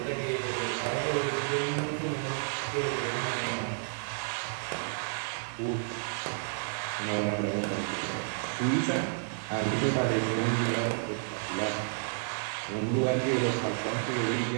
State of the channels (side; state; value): left; silent; 57 dB below the other